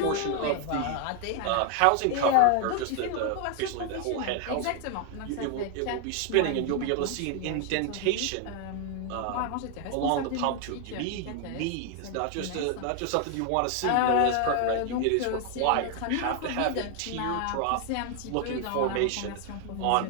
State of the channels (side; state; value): both; different; correlation 0.01